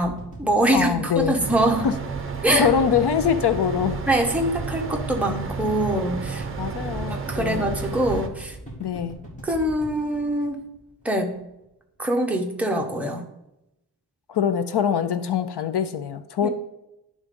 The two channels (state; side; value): normal; both; correlation 0.35